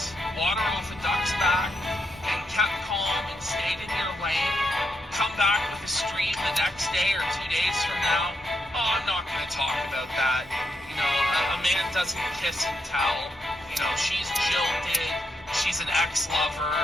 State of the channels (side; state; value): both; normal; correlation 0.80